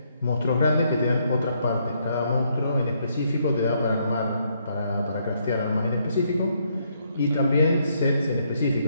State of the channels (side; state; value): both; inverted; correlation -0.73